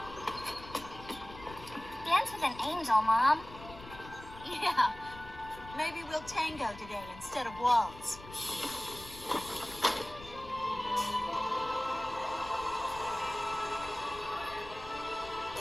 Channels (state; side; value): noise; left; rumble, 16 dB below the sound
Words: Dance with an angel, Mom. Yeah. Maybe we'll tango today instead of waltz.